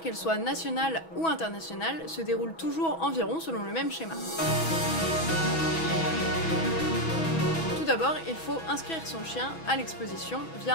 qu'elle soit nationale ou internationale, se déroule toujours environ selon le même schéma. Tout d'abord, il faut inscrire son chien à l'exposition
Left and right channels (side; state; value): right; late; 6.2 ms